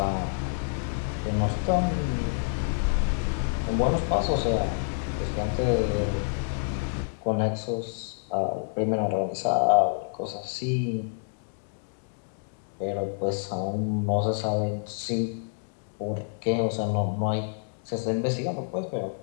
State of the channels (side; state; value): right; silent; digital silence